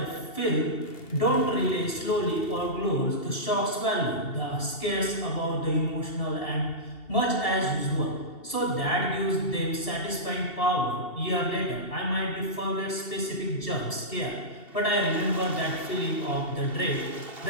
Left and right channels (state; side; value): late; right; 2.7 ms